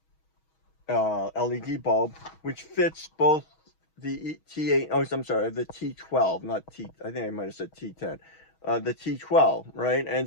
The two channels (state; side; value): late; right; 6.3 ms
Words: bulb, which fits both the T8, oh, I'm sorry, the T12, not T, I think I might have said T10, the T12, right?